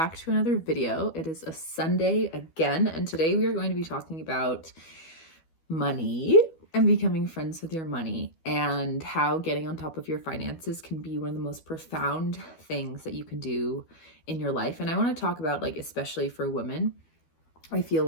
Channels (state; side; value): late; right; 12 ms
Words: to another video. It is a Sunday again, and today we are going to be talking about money and becoming friends with your money and how getting on top of your finances can be one of the most profound things that you can do in your life. And I want to talk about, like, especially for women, I feel